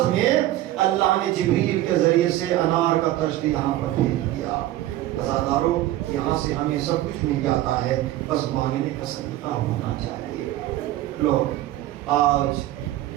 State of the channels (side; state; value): left; quieter; 14.9 dB